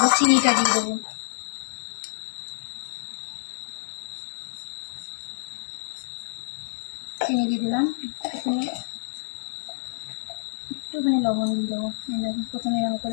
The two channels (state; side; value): silent; right; digital silence